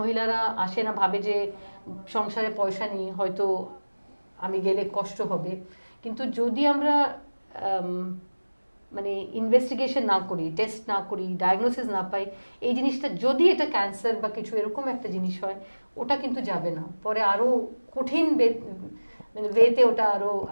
আসে না, ভাবে যে সংসারে পয়সা নেই, হয়তো আমি গেলে কষ্ট হবে, কিন্তু যদি আমরা মানে ইনভেস্টিগেশন না করি, টেস্ট না করি, ডায়াগনোসিস না পাই, এই জিনিসটা যদি এটা ক্যান্সার বা কিছু এরকম একটা জিনিস হয়, ওটা কিন্তু যাবে না, পরে আরো কঠিন মানে ওয়েতে ওটা আরো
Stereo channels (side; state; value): both; inverted; correlation -1.00